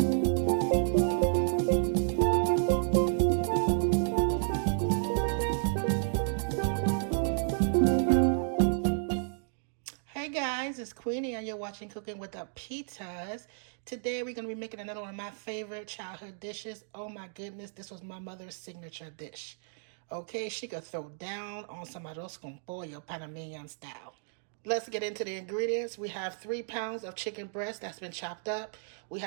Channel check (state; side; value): silent; left; digital silence